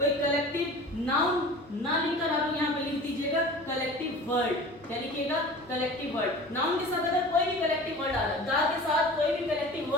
कलेक्टिव नाउन ना लिखकर आप यहाँ पे लिख दीजिएगा कलेक्टिव वर्ड। क्या लिखिएगा? Collective word. नाउन के साथ अगर कोई भी कलेक्टिव वर्ड आ रहा है, द के साथ कोई भी कलेक्टिव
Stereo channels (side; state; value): both; normal; correlation 0.39